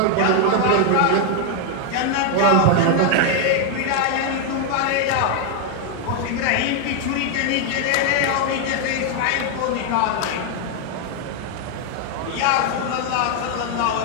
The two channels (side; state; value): both; different; correlation 0.01